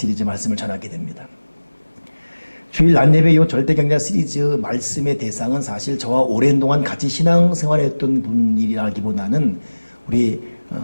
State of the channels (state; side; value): inverted; both; correlation -1.00